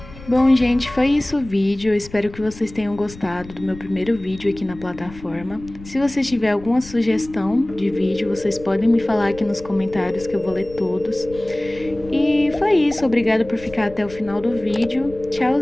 Bom, gente, foi isso o vídeo. Eu espero que vocês tenham gostado do meu primeiro vídeo aqui na plataforma. Se você tiver alguma sugestão de vídeo, vocês podem me falar aqui nos comentários que eu vou ler todos. E foi isso. Obrigada por ficar até o final do vídeo.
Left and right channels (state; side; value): noise; left; rumble, 17 dB below the sound